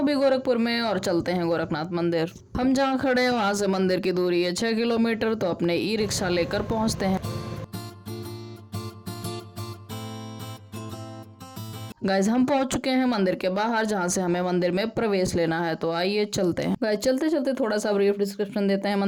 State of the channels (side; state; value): both; identical; correlation 1.00